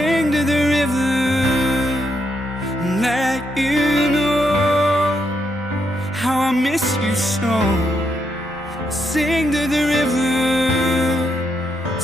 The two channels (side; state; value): both; normal; correlation 0.79